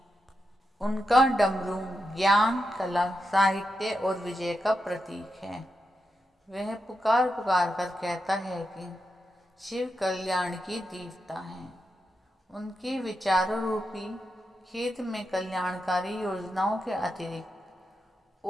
उनका डमरू ज्ञान, कला, साहित्य और विजय का प्रतीक है। वह पुकार पुकार कर कहता है कि शिव कल्याण की देवता हैं। उनके विचारों रूपी खेत में कल्याणकारी योजनाओं के अतिरिक्त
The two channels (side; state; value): both; normal; correlation 0.87